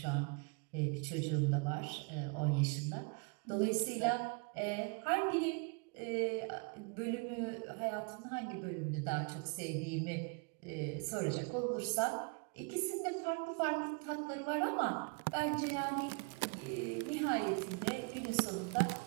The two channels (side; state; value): left; quieter; 33.5 dB